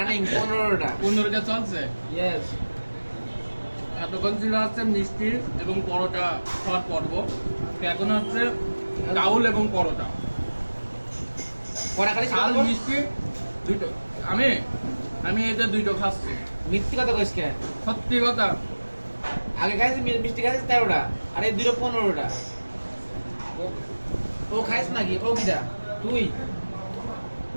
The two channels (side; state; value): both; inverted; correlation -1.00